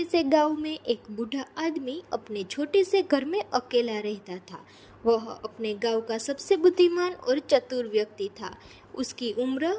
से गांव में एक बूढ़ा आदमी अपने छोटे से घर में अकेला रहता था। वह अपने गांव का सबसे बुद्धिमान और चतुर व्यक्ति था। उसकी उम्र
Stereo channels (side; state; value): both; identical; correlation 1.00